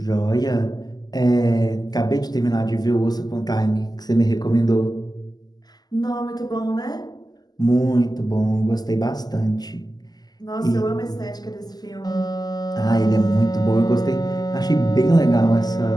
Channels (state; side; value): late; right; 0.20 ms